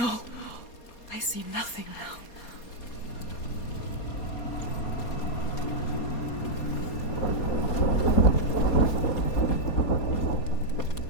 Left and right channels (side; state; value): right; late; 4.2 ms